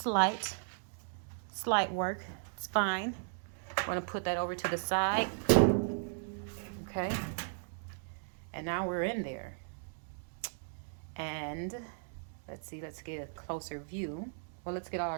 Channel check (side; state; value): left; silent; digital silence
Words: light. It's light work. It's fine. I'm going to put that over to the side. Okay. And now we're in there. And let's see, let's get a closer view. Well, let's get all